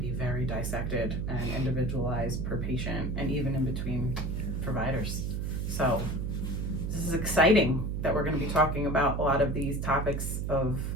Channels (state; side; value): noise; right; hum, 1 dB below the sound